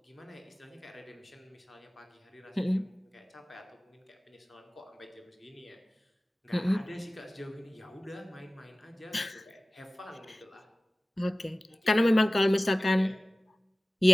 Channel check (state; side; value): normal; both; correlation 0.97